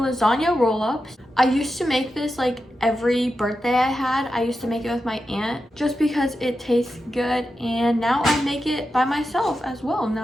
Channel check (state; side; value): normal; both; correlation 0.90